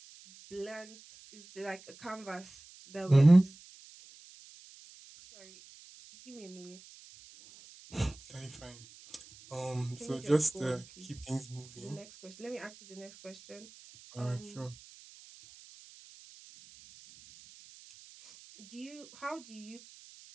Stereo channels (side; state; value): right; noise; hiss, 21 dB below the sound